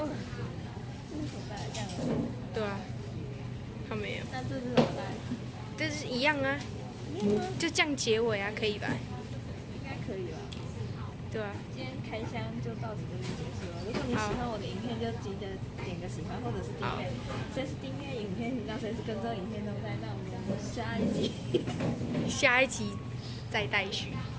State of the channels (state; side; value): identical; both; correlation 1.00